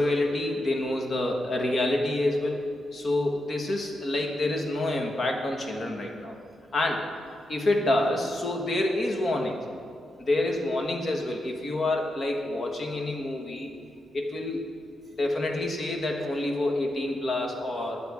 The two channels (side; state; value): both; normal; correlation 0.86